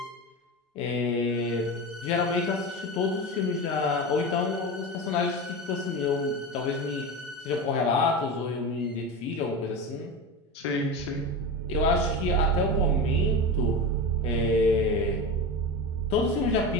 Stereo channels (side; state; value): both; normal; correlation 0.23